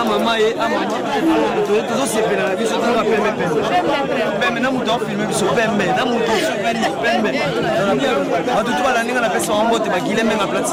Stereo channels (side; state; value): both; identical; correlation 1.00